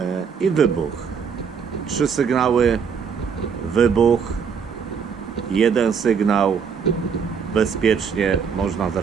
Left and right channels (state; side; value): quieter; left; 6.5 dB